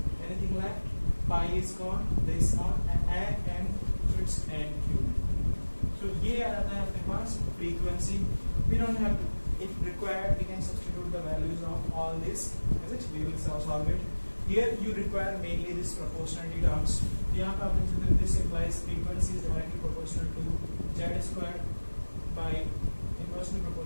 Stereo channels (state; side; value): inverted; both; correlation -1.00